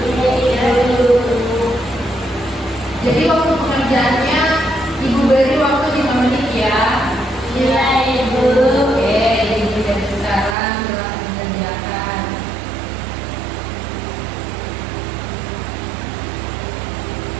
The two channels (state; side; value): drops out; left; at 10.6 s